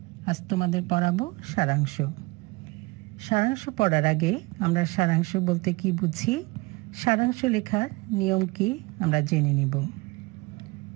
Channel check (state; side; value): quieter; left; 24.2 dB